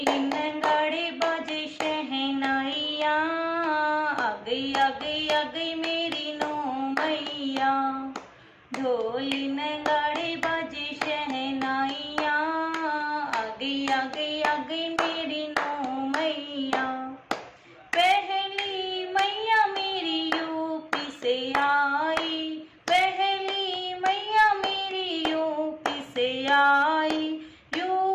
नगाड़े बाजे शहनाइया, आ गई आ गई आ गई मेरी नौ मैया। ढोल नगाड़े बाजे शहनाइया, आ गई आ गई आ गई मेरी नौ मैया। पहली मैया मेरी यूपी से आई, पहली मैया मेरी यूपी से आई।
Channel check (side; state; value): both; identical; correlation 1.00